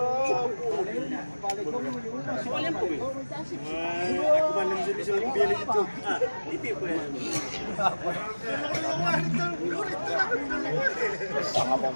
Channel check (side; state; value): both; inverted; correlation -1.00